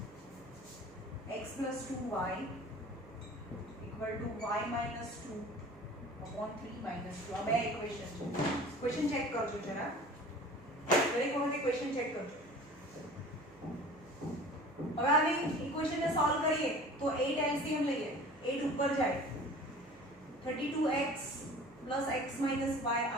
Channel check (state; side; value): noise; right; hum, 23 dB below the sound